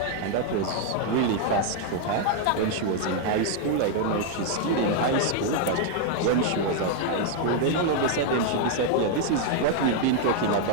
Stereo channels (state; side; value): different; both; correlation 0.00